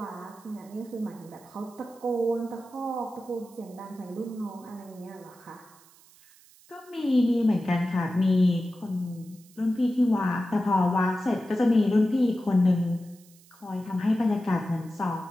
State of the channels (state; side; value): noise; right; hiss, 26 dB below the sound